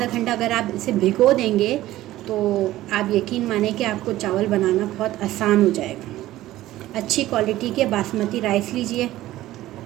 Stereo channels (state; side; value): quieter; left; 15.4 dB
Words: घंटा अगर आप इसे भिगो देंगे तो आप यकीन माने कि आपको चावल बनाना बहुत आसान हो जाएगा। अच्छी क्वालिटी के बासमती राइस लीजिए।